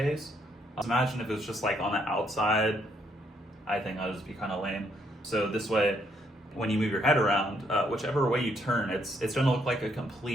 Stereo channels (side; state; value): both; normal; correlation 0.72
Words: Imagine if it was just like on the outside. I think that would just be kind of lame. So this way, when you move your head around, whichever way you turn, it's going to look like a